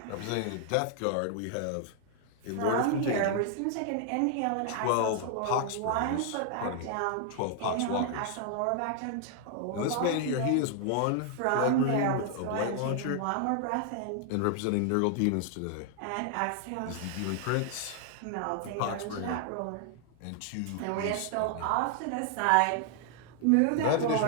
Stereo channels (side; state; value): both; different; correlation 0.00